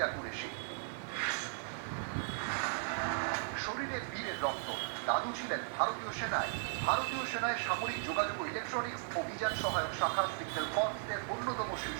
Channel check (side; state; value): left; silent; 53 dB below the other